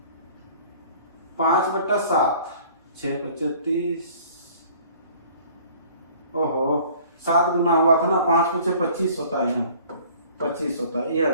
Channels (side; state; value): both; inverted; correlation -0.51